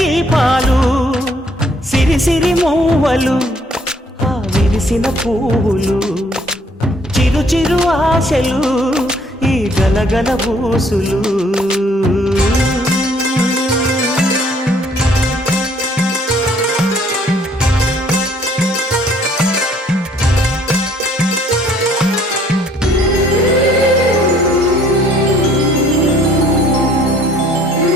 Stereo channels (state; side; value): normal; both; correlation 0.61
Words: సిరి సిరి మూవలు ఆ విరిసిన పువ్వులు చిరు చిరు ఆశలు ఈ గలగల ఊసులు